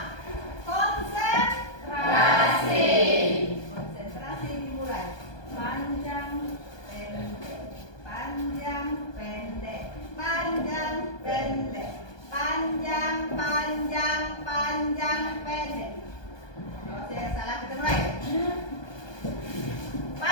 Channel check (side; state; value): right; late; 1.2 ms